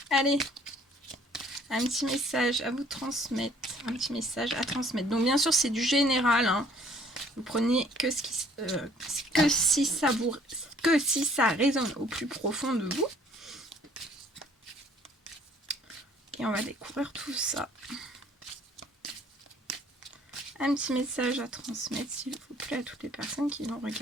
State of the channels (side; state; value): both; normal; correlation 0.58